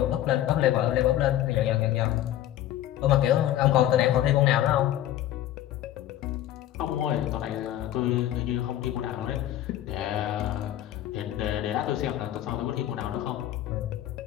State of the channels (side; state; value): right; quieter; 12.8 dB